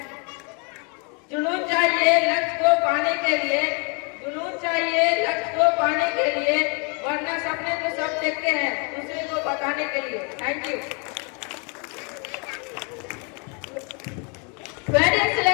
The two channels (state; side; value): quieter; right; 34.6 dB